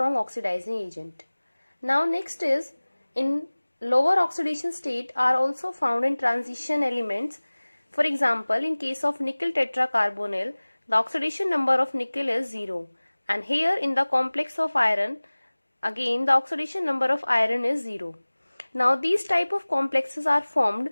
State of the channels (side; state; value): both; inverted; correlation -1.00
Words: oxidizing agent. Now next is, in lower oxidation state are also found in transition elements. For example, in case of nickel tetracarbonyl, the oxidation number of nickel is 0, and here in the complex of iron, again the oxidation number of iron is 0. Now these type of complexes are formed